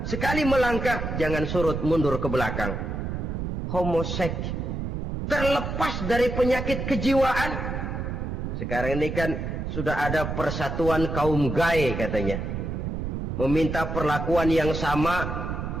Sekali melangkah, jangan surut mundur ke belakang. Homoseks, terlepas dari penyakit kejiwaan. Sekarang ini kan sudah ada persatuan kaum gay katanya. Meminta perlakuan yang sama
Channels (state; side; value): noise; right; rumble, 4 dB below the sound